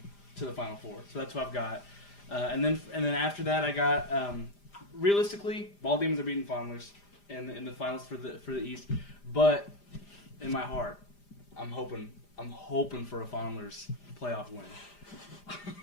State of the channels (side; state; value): right; late; 5.0 ms